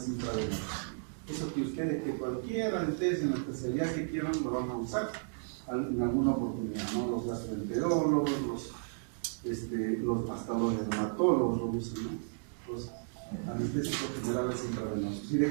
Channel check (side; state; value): left; silent; digital silence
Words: intravenosos. Eso que ustedes, que cualquier anestesia en la especialidad que quieran, lo van a usar en alguna oportunidad, ¿no? Los gastroenterólogos, hasta los dermatólogos lo usan, ¿no? Los anestésicos generales intravenosos. ¿Y de